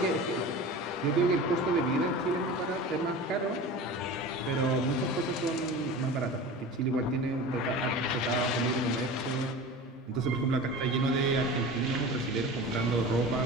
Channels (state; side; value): normal; both; correlation 0.34